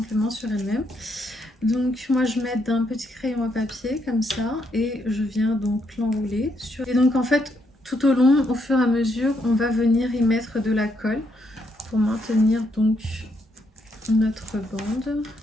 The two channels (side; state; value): both; normal; correlation 0.76